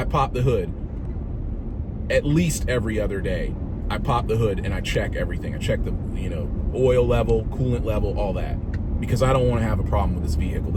pop the hood. At least every other day I pop the hood and I check everything. I check the oil level, coolant level, all that, because I don't want to have a problem with this vehicle.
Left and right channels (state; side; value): identical; both; correlation 1.00